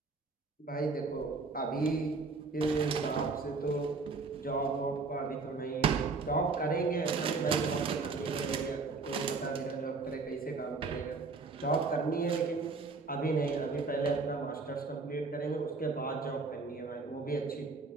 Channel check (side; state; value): left; quieter; 4.2 dB